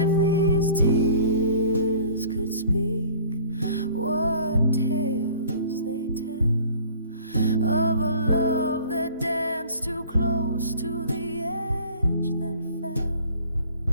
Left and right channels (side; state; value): both; inverted; correlation -0.48